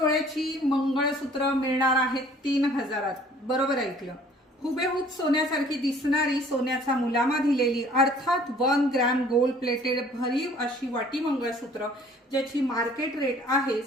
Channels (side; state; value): both; normal; correlation 0.54